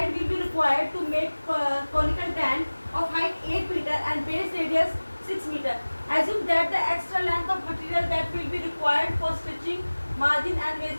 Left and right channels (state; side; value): inverted; both; correlation -1.00